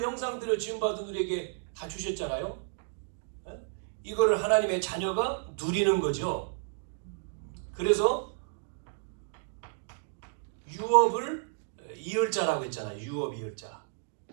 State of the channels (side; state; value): left; silent; digital silence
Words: 지원받은 우리에게 다 주셨잖아요. 이거를 하나님의 자녀가 누리는 거죠. 그래서 유업을 이을 자라고 했잖아요. 유업 이을 자.